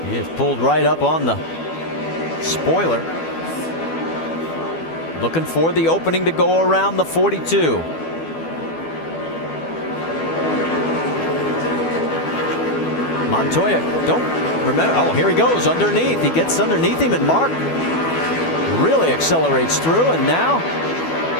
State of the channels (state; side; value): late; right; 12 ms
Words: He is pulled right up on the spoiler. Looking for the opening to go around the 42. Montoya, don't remember. Oh, here he goes underneath. He gets underneath him, and Mark really accelerates through, and now